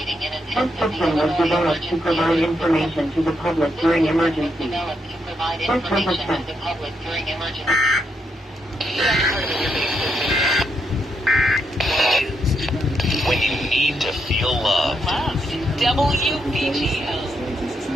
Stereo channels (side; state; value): both; normal; correlation 0.80